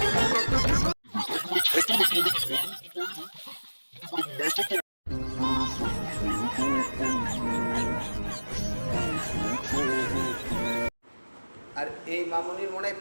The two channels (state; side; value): inverted; both; correlation -1.00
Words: আর এই মামুনির মনে হয়